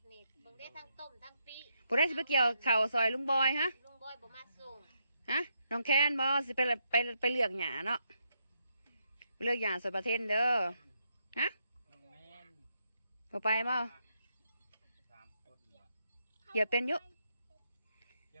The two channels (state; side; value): inverted; both; correlation -0.80